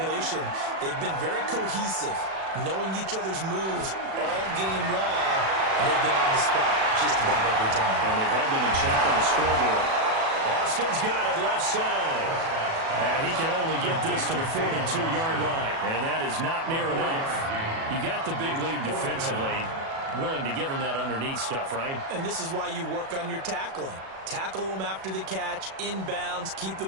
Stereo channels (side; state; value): left; late; 37 ms